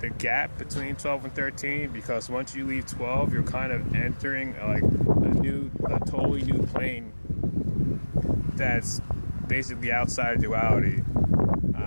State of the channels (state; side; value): inverted; both; correlation -1.00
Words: gap between 12 and 13, because once you leave 12, you're kind of entering like a totally new plane that's basically outside of duality.